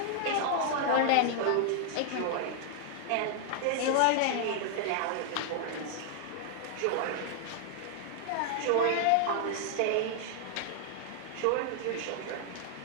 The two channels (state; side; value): different; both; correlation 0.00